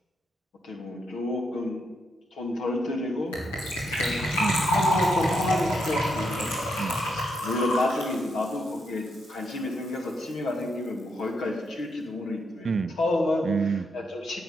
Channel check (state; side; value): normal; both; correlation 0.80